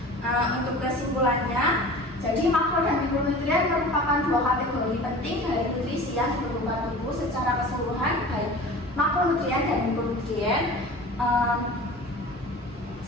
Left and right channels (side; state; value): both; normal; correlation 0.39